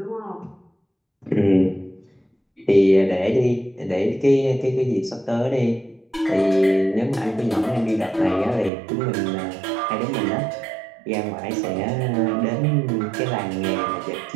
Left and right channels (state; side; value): drops out; left; at 8.7 s